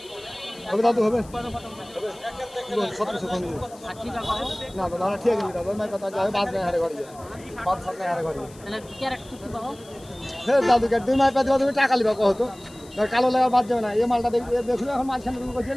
হবে। দাদু হবে 1700 না দাদা, ঠিক আছে দাদা, মাই কথা যায় বাদ নাই হারে ঘরে বাদ সব নাই হারে ঘরে তাহলে ক্যারেট টুকু পাবো। হ্যাঁ দাদু, দুই মাই পা দিবা, তুমি টাকা লিবা কত কালো লাগা বাদ যাবে না। এই মালটা দেখুন এখন মাঝখানে তুমি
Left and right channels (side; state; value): left; noise; hiss, 23 dB below the sound